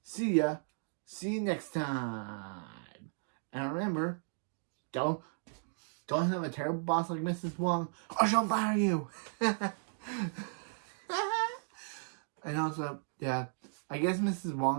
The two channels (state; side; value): silent; left; digital silence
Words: see ya. See you next time. And remember, don't have a terrible boss like Mrs. Wong or she'll fire you. And also, yeah, I guess Mrs.